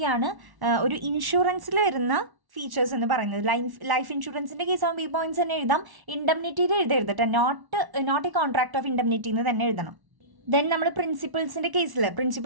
ഒരു ഇൻഷുറൻസിൽ വരുന്ന ഫീച്ചേഴ്സ് എന്ന് പറയുന്നത്. ലൈഫ് ഇൻഷുറൻസിൻ്റെ കേസ് ആകുമ്പോൾ ഈ പോയിന്റ്സ് തന്നെ എഴുതാം. ഇൻഡെംനിറ്റിയിൽ എഴുതരുതട്ടെ, not a contract of indemnity എന്ന് തന്നെ എഴുതണം. ദെൻ നമ്മൾ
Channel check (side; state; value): left; late; 1.1 ms